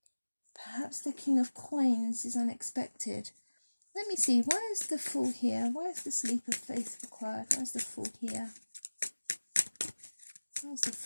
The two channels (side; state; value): both; inverted; correlation -1.00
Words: perhaps the King of Coins is unexpected. Let me see, why is the Fool here? Why is this leap of faith required? Why is the Fool here? Why is the